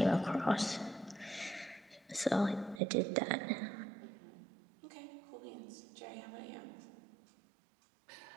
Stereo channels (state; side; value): drops out; left; at 2.8 s